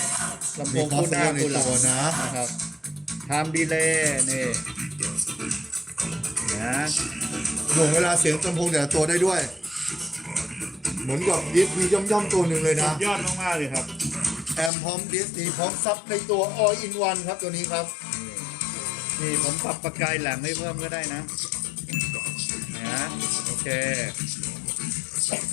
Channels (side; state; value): right; drops out; at 14.7 s